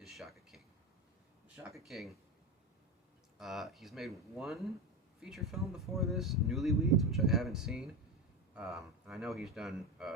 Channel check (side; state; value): both; normal; correlation 0.19